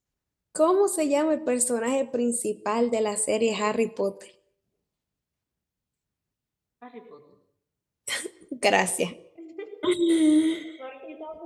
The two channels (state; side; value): identical; both; correlation 1.00